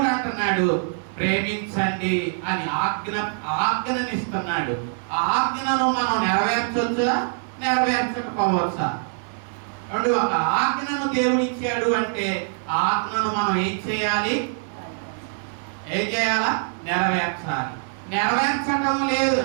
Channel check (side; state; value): left; silent; 63 dB below the other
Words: అంటున్నాడు ప్రేమించండి అని ఆజ్ఞనిస్తున్నాడు. ఆ ఆజ్ఞను మనం నెరవేర్చొచ్చా, నెరవేర్చకపోవచ్చా? ఒక ఆజ్ఞను దేవుడు ఇచ్చాడు అంటే ఆ ఆజ్ఞను మనం ఏం చేయాలి? ఏం చేయాలా? నెరవేర్చాలి. నెరవేర్చటం లేదు.